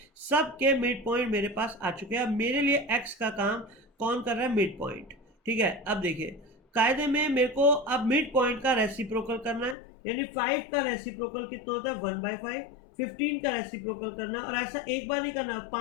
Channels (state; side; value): drops out; right; at 9.8 s